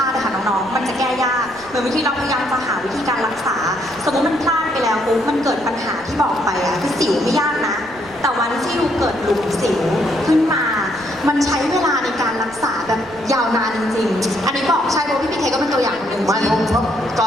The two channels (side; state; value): right; noise; rumble, 24 dB below the sound